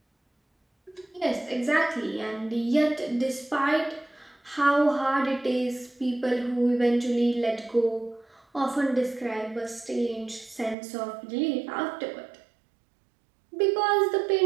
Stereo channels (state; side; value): drops out; left; at 10.8 s